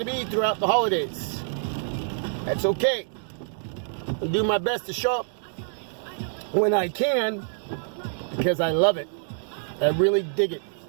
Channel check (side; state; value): left; silent; digital silence